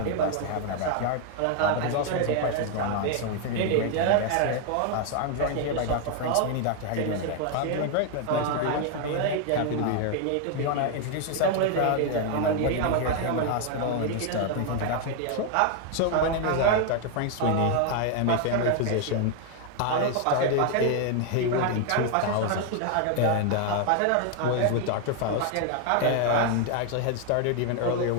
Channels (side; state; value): both; different; correlation 0.00